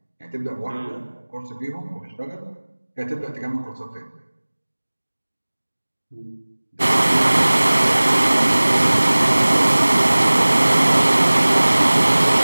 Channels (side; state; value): both; inverted; correlation -1.00